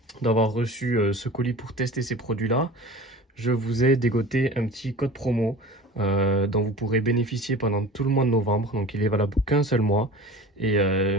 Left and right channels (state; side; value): normal; both; correlation 0.38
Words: d'avoir reçu ce colis pour tester ces produits-là, je vous ai dégoté un petit code promo dont vous pourrez bénéficier pendant tout le mois de novembre. Donc il est valable qu'un seul mois. Et